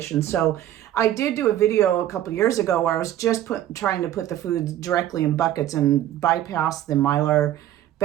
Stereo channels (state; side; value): quieter; left; 12.4 dB